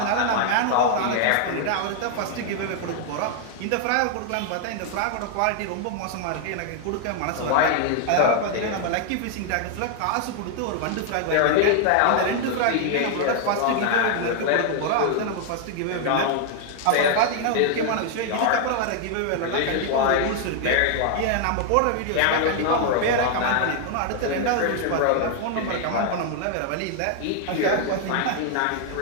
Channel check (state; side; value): different; both; correlation 0.00